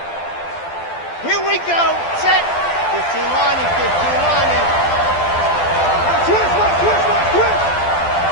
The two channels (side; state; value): right; late; 12 ms